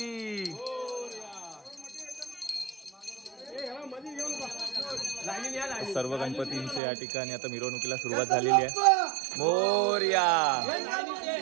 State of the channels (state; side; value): drops out; left; at 6.8 s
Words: सर्व गणपतींचे या ठिकाणी आता मिरवणुकीला सुरुवात झालेली आहे. मोरया